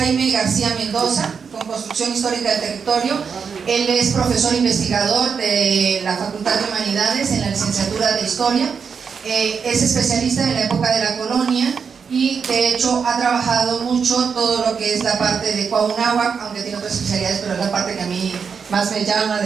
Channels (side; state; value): left; quieter; 6.2 dB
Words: García Mendoza, con Construcción Histórica del Territorio. Él es profesor investigador de la Facultad de Humanidades en la licenciatura de Historia. Es especialista en la época de la colonia y de hecho ha trabajado mucho todo lo que es la parte de Cuauhnáhuac, aunque tiene otras especialidades, pero es la parte que a mí más me llama